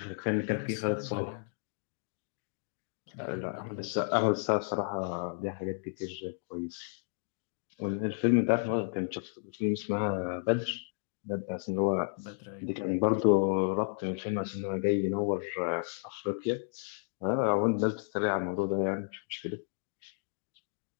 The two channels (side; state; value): right; silent; digital silence